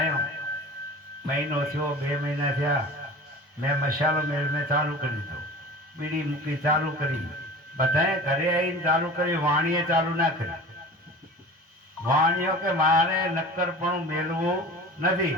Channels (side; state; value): both; normal; correlation 0.37